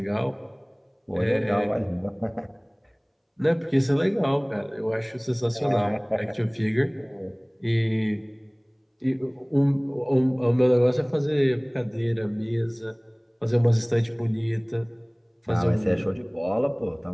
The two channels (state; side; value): identical; both; correlation 1.00